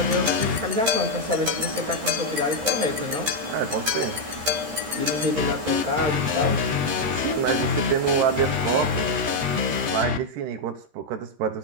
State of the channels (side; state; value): left; late; 13 ms